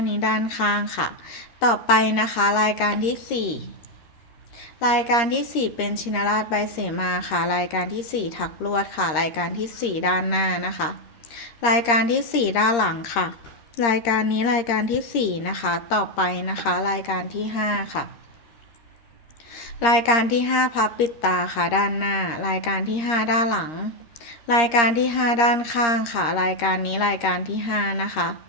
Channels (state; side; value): late; right; 13 ms